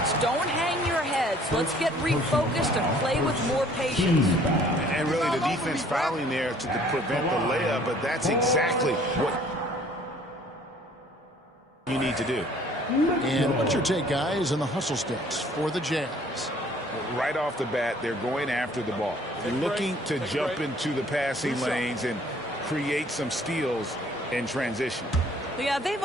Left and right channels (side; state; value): both; normal; correlation 0.56